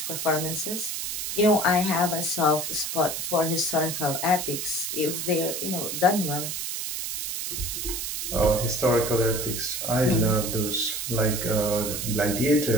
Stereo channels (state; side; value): noise; right; hiss, 4 dB below the sound